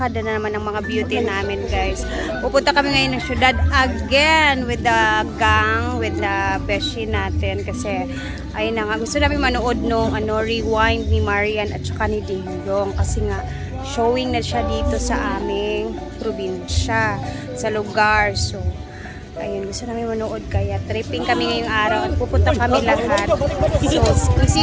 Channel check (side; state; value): both; identical; correlation 1.00